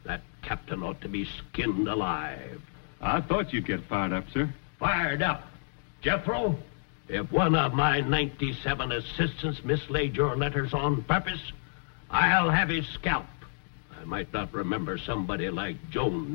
That captain ought to be skinned alive. I thought you'd get fired up, sir. Fired up? Jethro, if one of my 97 assistants mislaid your letters on purpose, I'll have his scalp. I might not remember somebody like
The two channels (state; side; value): silent; right; digital silence